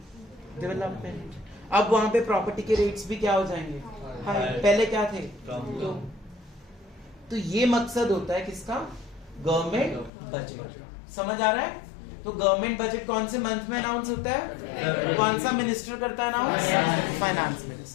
डेवलपमेंट। अब वहां पे प्रॉपर्टी के रेट्स भी क्या हो जाएंगे, हाई। पहले क्या थे, तो ये मकसद होता है किसका, गवर्नमेंट बजट। समझ आ रहा है? तो गवर्नमेंट बजट कौन से मंथ में अनाउंस होता है, कौन सा मिनिस्टर करता है अनाउंस, फाइनेंस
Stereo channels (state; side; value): drops out; right; at 10.1 s